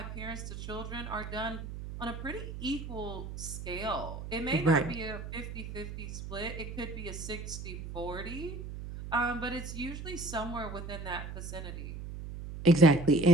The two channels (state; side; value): noise; right; hum, 9 dB below the sound